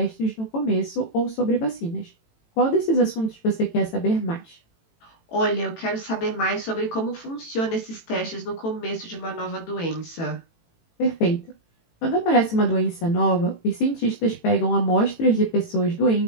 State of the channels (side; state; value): right; late; 18 ms